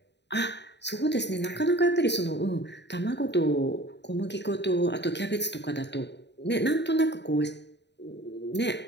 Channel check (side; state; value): right; late; 0.50 ms